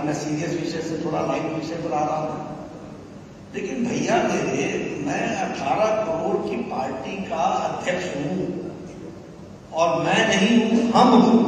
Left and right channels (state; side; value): identical; both; correlation 1.00